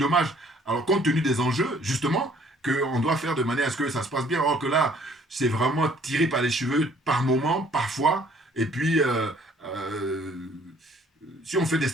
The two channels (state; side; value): normal; both; correlation 0.59